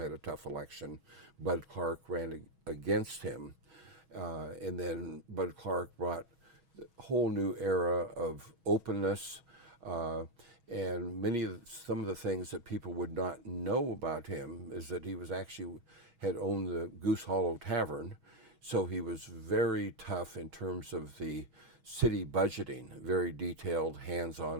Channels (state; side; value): late; left; 6.3 ms